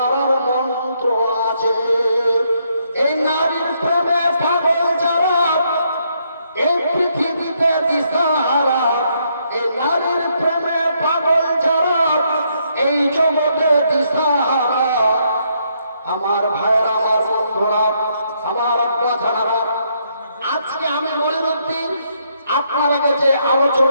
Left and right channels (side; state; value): both; inverted; correlation -0.74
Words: মন্ত্র আছে। এই নারীর প্রেমে পাগল যারা, এই পৃথিবীতে দিশাহারা, এই নারীর প্রেমে পাগল যারা, এই জগতে দিশাহারা। আমার ভাইয়েরা, আমার বন্ধুরা, আমার আব্বা জানারা, আজকে আমি মনিরুদ্দিন আপনারা কাছে